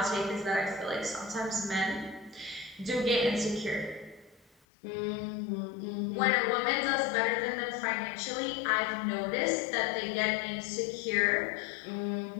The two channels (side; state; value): right; drops out; at 4.5 s